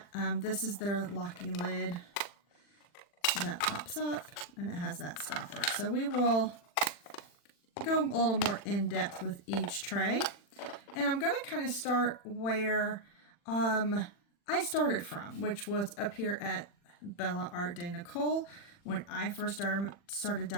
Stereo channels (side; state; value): right; late; 40 ms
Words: This is their locking lid that pops up, and it has that stopper. So we will go a little more in depth with each tray. And I'm going to kind of start where I started from, which was up here at Bella Art de Nicole. When I first started